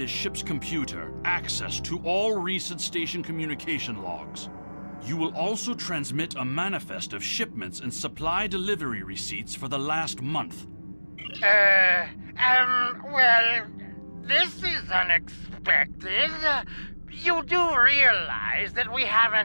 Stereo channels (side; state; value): both; inverted; correlation -1.00